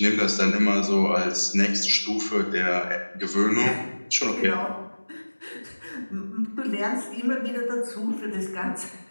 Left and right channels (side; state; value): both; inverted; correlation -1.00